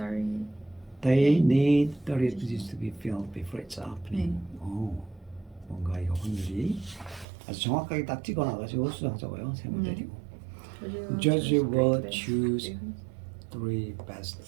They need 38 positions to be filled before it's opening. 뭔가 이거 확률이 아주 정확하게 딱 찍어놔가지고 수정하자고요. 세모 때리고. Judge will choose 3 best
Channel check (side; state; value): left; drops out; at 7.2 s